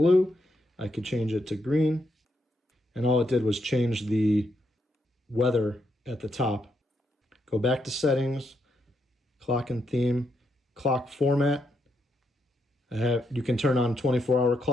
I could change it to green. And all it did was change the weather at the top. Go back to settings, clock and theme, clock format. You can turn on 24-hour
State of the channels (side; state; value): both; normal; correlation 0.79